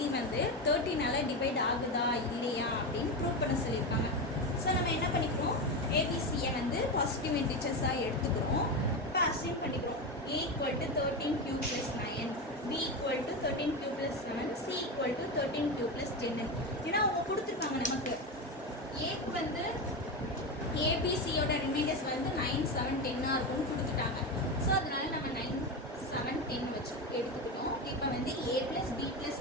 வந்து 13ஆல டிவைட் ஆகுதா இல்லையா அப்படின்னு ப்ரூவ் பண்ண சொல்லியிருக்காங்க. ஸோ நம்ம என்ன பண்ணிக்கிறோம், ஏபிசியை வந்து பாசிட்டிவ் இன்டிஜர்ஸாக எடுத்துக்கிறோம். இப்போ அசைன் பண்ணிக்கிறோம். A equal to 13q plus 9, B equal to 13q plus 7, C equal to 13q plus 10. ஏன்னா அவங்க கொடுத்துருக்காங்க நமக்கு ஏக்கு வந்து ஏபிசியோட ரிமைண்டர்ஸ் வந்து 9, 7, 10 இருக்கும்னு கொடுத்துட்டாங்க. ஸோ அதனால நம்ம 9, 7, 10 வச்சு எடுத்துக்கிட்டோம். இப்போ வந்து A plus B plus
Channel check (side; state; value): both; normal; correlation 0.17